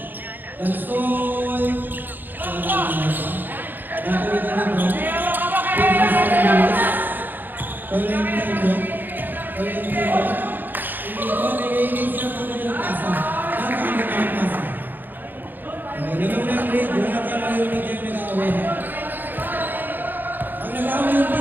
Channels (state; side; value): late; left; 0.089 ms